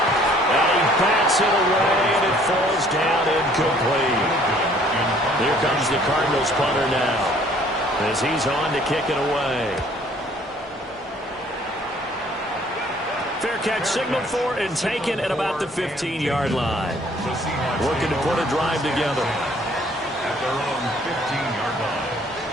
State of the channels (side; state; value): both; normal; correlation 0.58